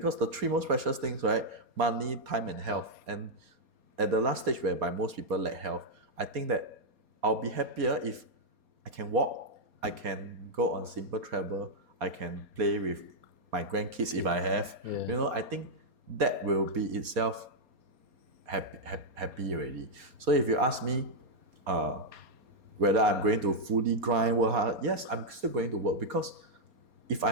the three most precious things, right? Money, time, and health. And at the last stage whereby most people lack health, I think that I'll be happier if I can walk, I can go on simple travel, I can play with my grandkids if I have. You know, I think that will be itself happy already. So if you ask me, whether I'm going to fully grind, work hard, yes, I'm still going to work, because if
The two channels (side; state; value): left; late; 4.2 ms